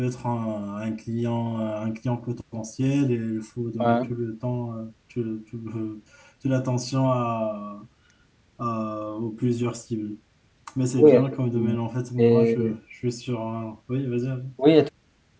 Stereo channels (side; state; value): both; identical; correlation 1.00